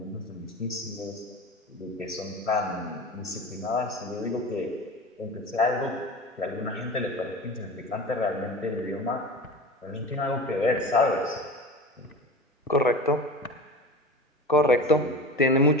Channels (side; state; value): both; normal; correlation 0.32